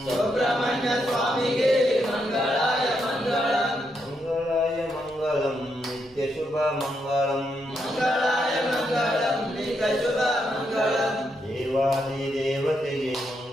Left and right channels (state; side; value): noise; right; hum, 29 dB below the sound